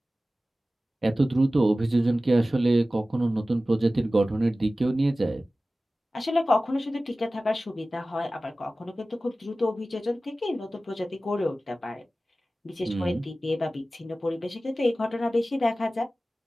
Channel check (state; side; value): normal; both; correlation 0.96